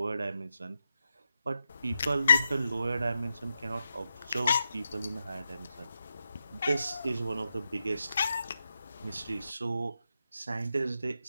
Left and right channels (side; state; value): both; inverted; correlation -0.87